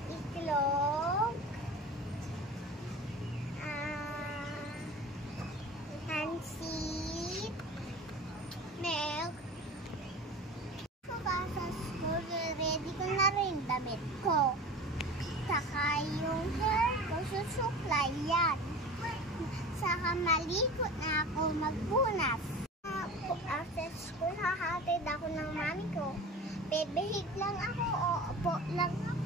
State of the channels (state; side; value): normal; both; correlation 0.36